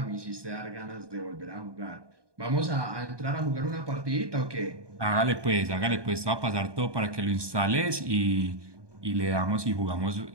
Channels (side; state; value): left; late; 1.2 ms